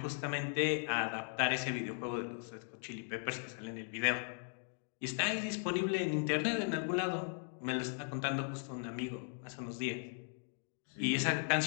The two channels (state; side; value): silent; right; 52 dB below the other